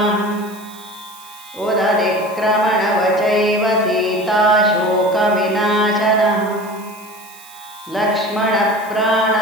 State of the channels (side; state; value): right; noise; hiss, 21 dB below the sound